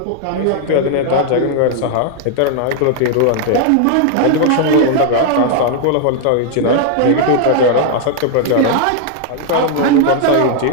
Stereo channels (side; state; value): both; different; correlation 0.00